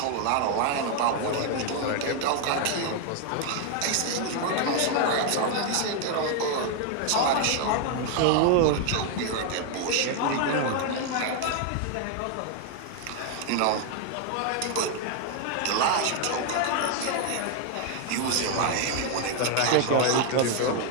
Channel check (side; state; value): both; different; correlation 0.01